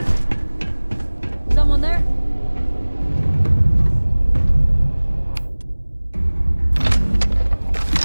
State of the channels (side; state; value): both; inverted; correlation -1.00